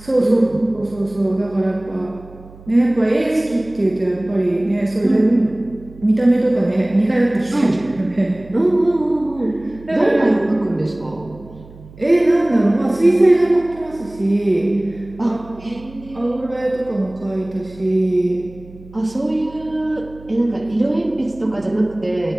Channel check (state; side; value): noise; right; hum, 20 dB below the sound